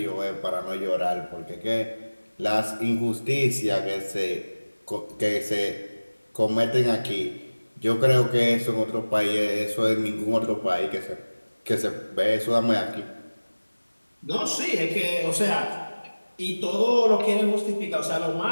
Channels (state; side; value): inverted; both; correlation -1.00